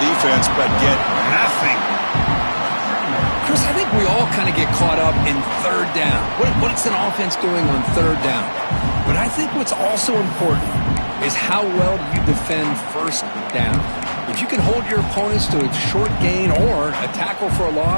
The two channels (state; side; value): inverted; both; correlation -1.00